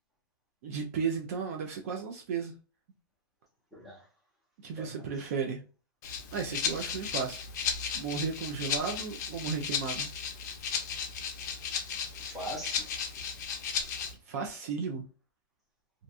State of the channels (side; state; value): both; normal; correlation -0.12